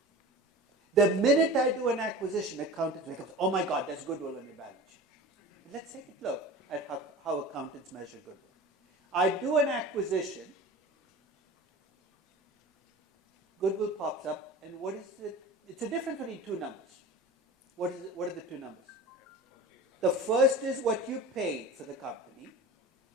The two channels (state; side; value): normal; both; correlation 0.36